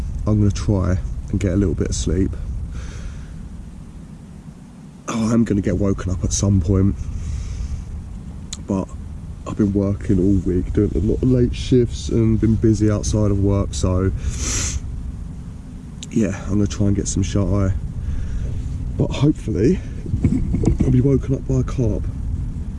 I'm gonna try and get a little bit of sleep. Oh, I'm gonna get woken up at some point, but I've been working all week, doing a lot of late shifts and been busy outside of work, so yeah, I'm gonna try and get some shut eye. But hopefully, I'll be woken up by a carp.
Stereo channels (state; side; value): identical; both; correlation 1.00